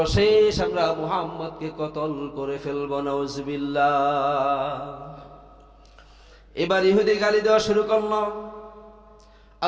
আমরা মুহাম্মদকে কতল করে ফেলব। নাউজুবিল্লাহ। এবার ইহুদি গালি দেওয়া শুরু করলো।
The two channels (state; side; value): identical; both; correlation 1.00